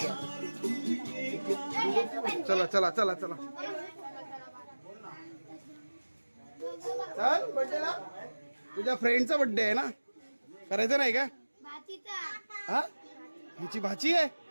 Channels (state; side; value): inverted; both; correlation -1.00